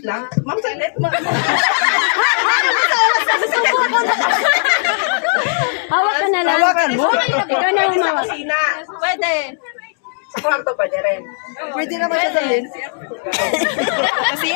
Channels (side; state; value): right; silent; 59 dB below the other